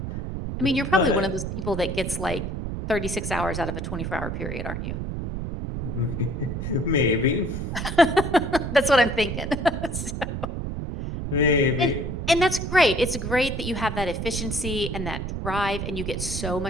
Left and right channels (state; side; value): noise; right; rumble, 4 dB below the sound